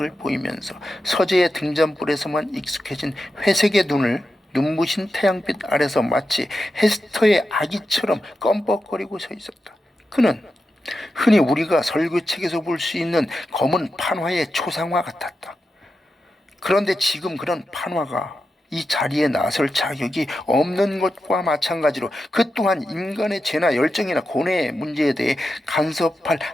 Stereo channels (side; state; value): both; normal; correlation 0.89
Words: 보이면서 서재의 등잔불에서만 익숙해진 회색의 눈을 눈부신 태양빛 아래서 마치 헤스터의 아기처럼 껌뻑거리고 서 있었다. 그는 흔히 우리가 설교책에서 볼 수 있는 검은 판화의 초상화 같았다. 그런데 지금 그런 판화가 이 자리에 나설 자격이 없는 것과 마찬가지로 그 또한 인간의 죄나 열정이나 고뇌의 문제에 대해 간섭할